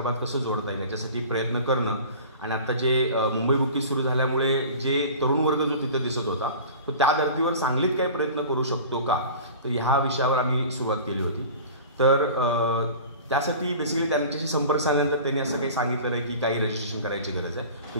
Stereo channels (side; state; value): both; inverted; correlation -0.39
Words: कसं जोडता येईल याच्यासाठी प्रयत्न करणं आणि आता जे मुंबई बुकीज सुरू झाल्यामुळे जे तरुण वर्ग जो तिथे दिसत होता तो त्या धर्तीवर सांगलीत काही प्रयत्न करू शकतो का, तर ह्या विषयावर आम्ही सुरुवात केली होती. तर त्यासाठी बेसिकली त्यांच्याशी संपर्क साधल्यानंतर त्यांनी असं काही सांगितलं आहे की काही रजिस्ट्रेशन करायची गरज आहे,